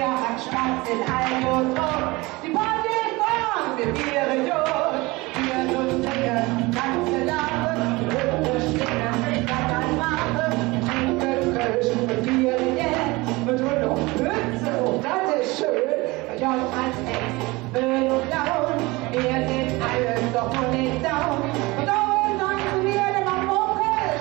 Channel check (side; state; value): left; quieter; 22.7 dB